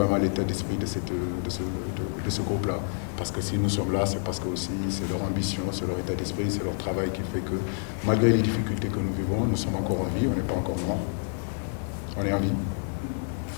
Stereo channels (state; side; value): silent; right; 59 dB below the other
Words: l'état d'esprit de ce groupe-là. Parce que si nous sommes là, c'est parce que aussi c'est leur ambition, c'est leur état d'esprit, c'est leur travail qui fait que malgré les difficultés que nous vivons, nous sommes encore en vie, on n'est pas encore morts. On est en vie. Il ne